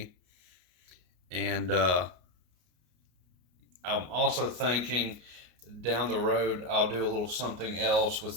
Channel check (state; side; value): late; left; 33 ms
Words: and I'm also thinking down the road I'll do a little something else